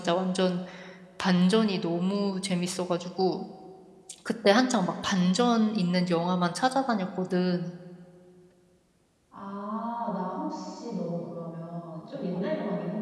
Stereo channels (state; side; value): identical; both; correlation 1.00